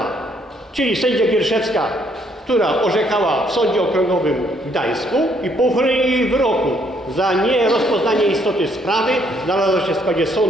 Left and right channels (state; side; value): normal; both; correlation 0.68